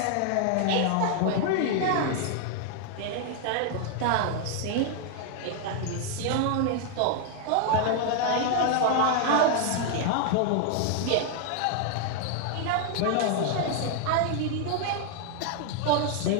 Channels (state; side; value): different; both; correlation 0.00